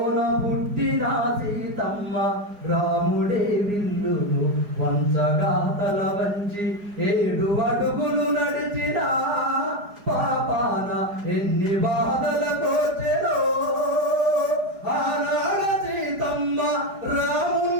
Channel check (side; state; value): left; late; 4.8 ms